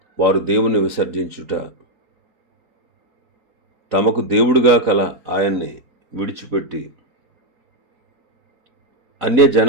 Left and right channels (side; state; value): left; late; 3.9 ms